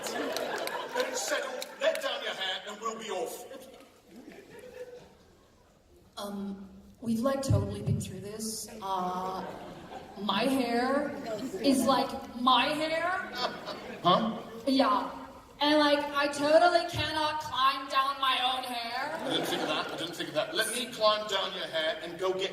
Then it's settled. Let down your hair and we'll be off. We've like totally been through this. My hair is like my hair. Huh? Yeah. And like, I totally cannot climb down my own hair. I didn't think of that. Let me climb down your hair and go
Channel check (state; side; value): identical; both; correlation 1.00